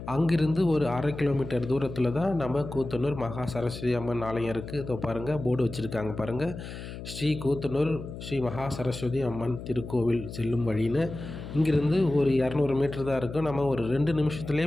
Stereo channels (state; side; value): noise; left; hum, 10 dB below the sound